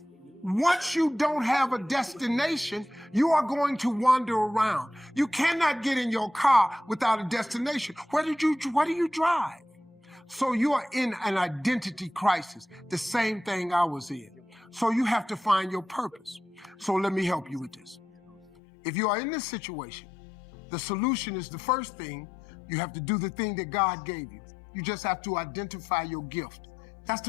Once you don't have a destination, you are going to wander around. You cannot get in your car without a destination. What do you drive? So you are in an identity crisis, the same thing I was in. So you have to find your purpose. So let me help you with this. If you are in this situation, the solution is the first thing. You have to do the thing that God gave you. You just have to identify your gift. That's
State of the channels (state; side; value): drops out; right; at 18.5 s